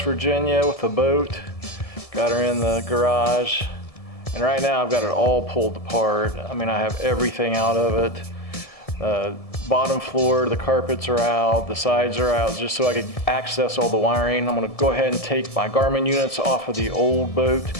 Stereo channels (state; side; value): late; right; 1.7 ms